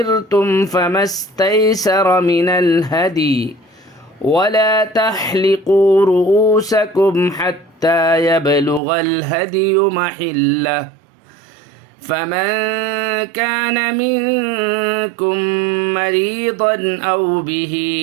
فما استيسر من الهدي، ولا تحلقوا رؤوسكم حتى يبلغ الهدي محله، فمن كان منكم مريضا أو به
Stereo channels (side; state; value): left; drops out; at 8.8 s